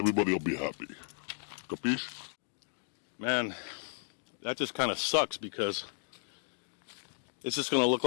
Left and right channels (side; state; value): right; silent; digital silence